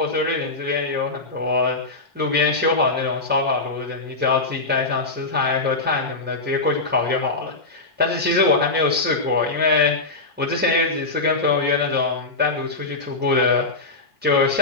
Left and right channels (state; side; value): quieter; right; 3.3 dB